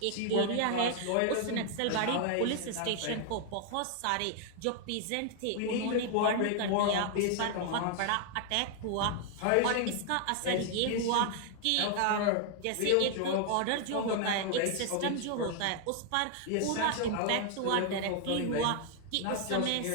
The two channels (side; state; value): both; different; correlation 0.00